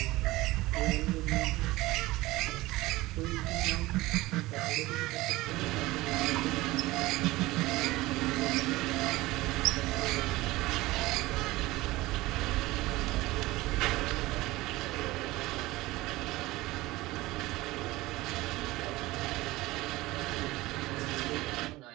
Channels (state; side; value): quieter; left; 19.2 dB